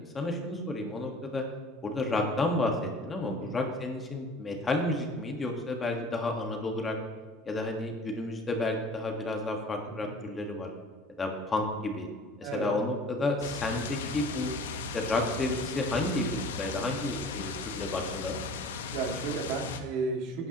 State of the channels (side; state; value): both; normal; correlation 0.44